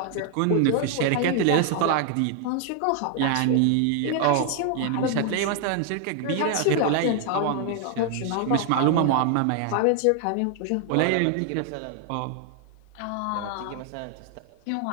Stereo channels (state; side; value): different; both; correlation 0.00